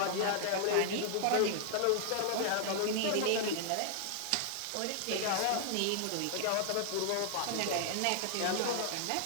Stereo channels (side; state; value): both; different; correlation 0.00